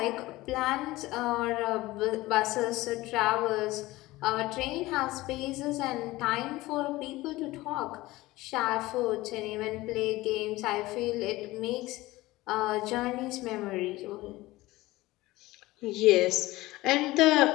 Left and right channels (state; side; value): quieter; right; 18.9 dB